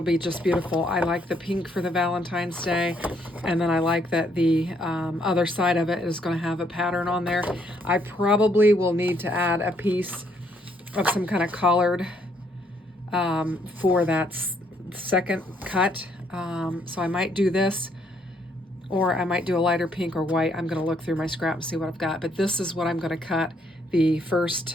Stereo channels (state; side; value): normal; both; correlation 0.70